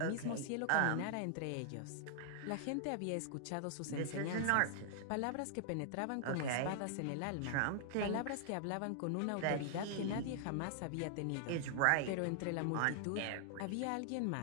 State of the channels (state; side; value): different; both; correlation 0.00